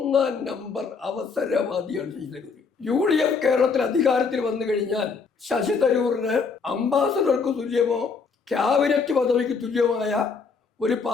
number അവസരവാദിയാണ് Sasi Tharoor. UDF കേരളത്തിൽ അധികാരത്തിൽ വന്നു കഴിഞ്ഞാൽ ശശി തരൂരിന് അംബാസഡർക്ക് തുല്യമോ ക്യാബിനറ്റ് പദവിക്ക് തുല്യമായ ഒരു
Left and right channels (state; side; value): quieter; right; 5.1 dB